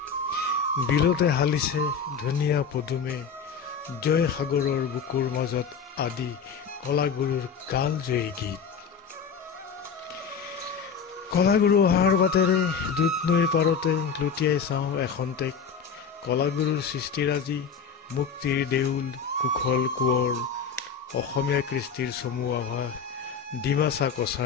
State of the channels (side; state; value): right; quieter; 6.1 dB